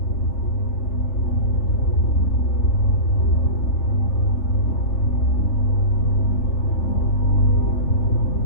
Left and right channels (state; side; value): late; right; 3.5 ms